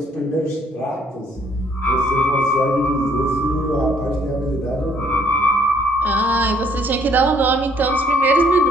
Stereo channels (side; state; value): both; normal; correlation 0.64